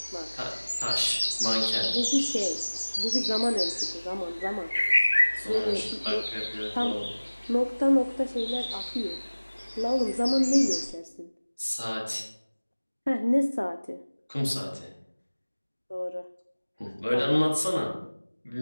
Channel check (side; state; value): both; inverted; correlation -1.00